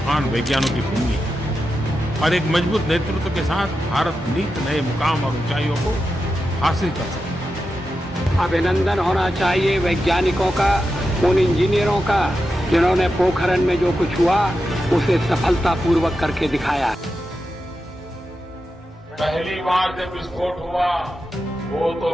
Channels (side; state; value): both; normal; correlation 0.89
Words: वैज्ञानिकों की भूमि है और एक मजबूत नेतृत्व के साथ भारत नित नए मुकाम और ऊंचाइयों को हासिल कर सकता है। अभिनंदन होना चाहिए वैज्ञानिकों का, उन इंजीनियरों का जिन्होंने पोखरण में जो कुछ हुआ उसे सफलतापूर्वक करके दिखाया। पहली बार जब विस्फोट हुआ वो